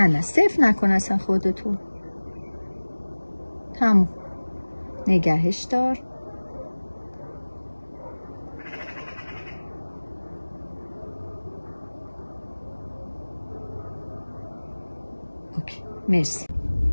صفر نکن اصلا خودتون. تموم. نگهش دار. اوکی. مرسی.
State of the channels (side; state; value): both; inverted; correlation -1.00